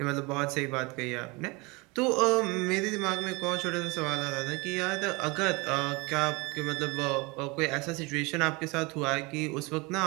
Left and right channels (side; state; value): left; quieter; 26.2 dB